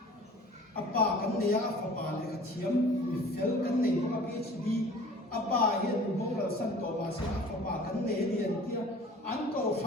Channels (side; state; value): both; normal; correlation 0.46